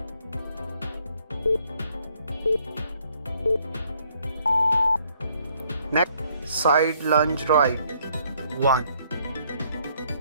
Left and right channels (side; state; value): both; inverted; correlation -0.67